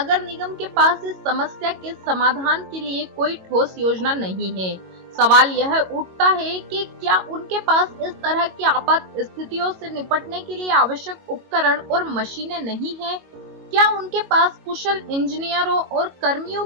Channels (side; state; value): left; late; 22 ms